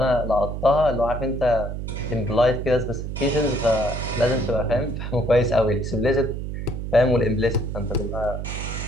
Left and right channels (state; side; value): noise; right; hum, 5 dB below the sound